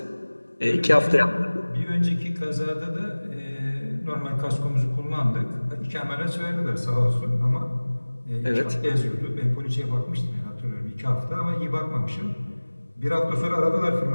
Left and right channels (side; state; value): both; inverted; correlation -1.00